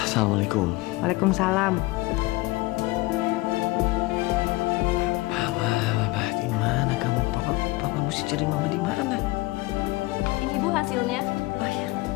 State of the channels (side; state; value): right; quieter; 21.6 dB